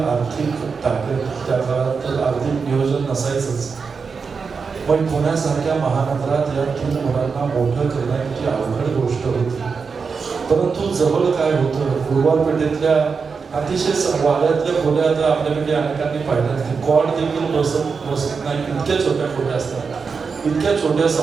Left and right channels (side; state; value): left; quieter; 5.3 dB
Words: ताकद त्या काळात आर्थिक नियोजन नसायचंच. पण पुण्यासारख्या महानगरात या 3 मुलांना मोठं करणं किती अवघड गोष्ट होती. परंतु जवळ काय होतं, गुरुवार पेठेतल्या अतिशय वाड्यातल्या खोल्या आता आपल्याकडे अनेकांनी पाहिल्या. कॉड देखील बसत नाही, इतक्या छोट्या खोल्या असतात. इतक्या छोट्या